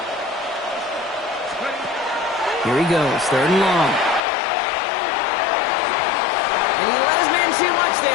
Here he goes, 3rd and long. And he let his man too much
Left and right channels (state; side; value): drops out; right; at 4.2 s